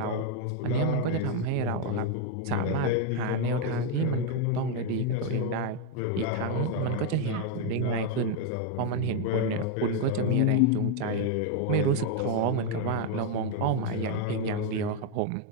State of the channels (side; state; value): both; different; correlation 0.01